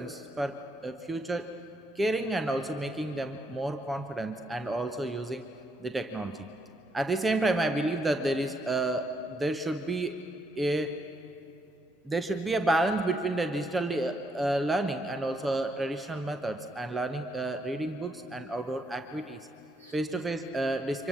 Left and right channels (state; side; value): normal; both; correlation 0.76